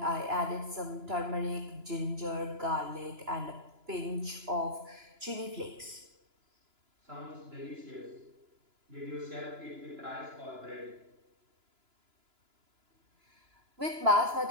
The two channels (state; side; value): late; left; 2.9 ms